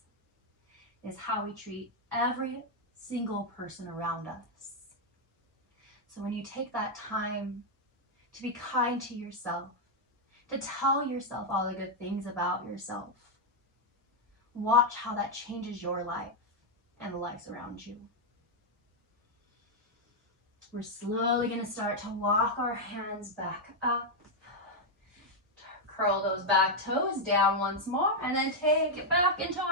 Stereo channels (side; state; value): both; normal; correlation 0.00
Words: is how we treat every single person around us. So when you take that time to be kind to yourself, to tell yourself all the good things about yourself, watch how that changes your life and the lives around you. We're slowly going to start to walk our hands back up, curl those back toes down once more, and then take it back into